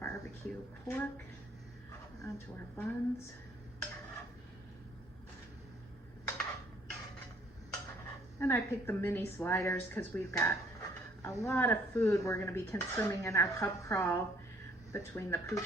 pork onto our buns. And I picked the mini sliders because we've got a lot of food we're going to be consuming in our pub crawl between the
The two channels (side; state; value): both; normal; correlation 0.61